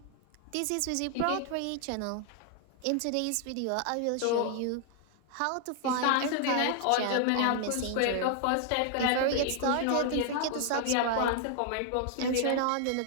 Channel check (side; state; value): both; different; correlation 0.00